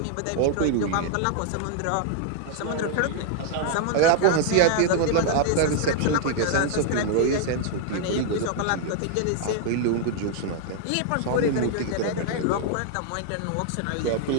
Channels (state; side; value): different; both; correlation 0.00